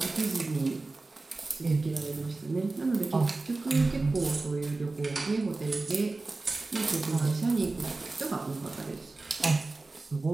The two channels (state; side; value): quieter; left; 3.4 dB